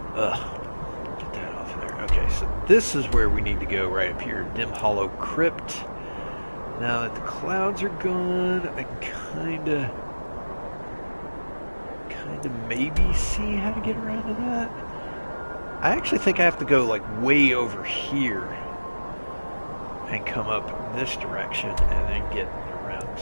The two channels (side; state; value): both; inverted; correlation -1.00